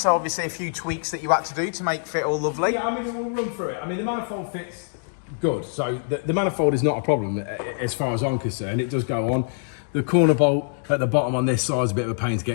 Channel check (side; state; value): right; silent; digital silence